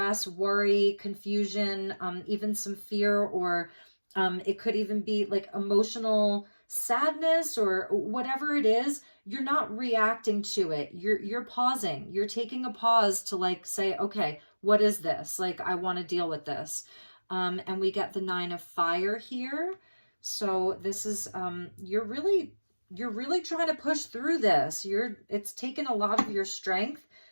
worry, confusion, even some fear, or it could even be like emotional sadness or whatever it is. you're not reacting to it. You're pausing. You're taking a pause to like say, okay, what is this? Like, I want to deal with this. And we get the 9 of fire here. So this is, you're really trying to push through this. It's taken a lot of your strength,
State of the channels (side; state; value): both; inverted; correlation -1.00